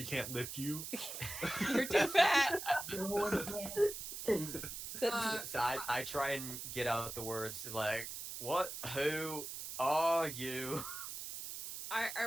can't lift you. You're too fat. Uh, So I try and get out the words like, "What? Who are you?"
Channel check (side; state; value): right; noise; hiss, 7 dB below the sound